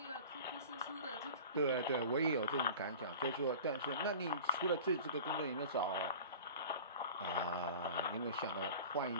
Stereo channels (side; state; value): both; inverted; correlation -0.39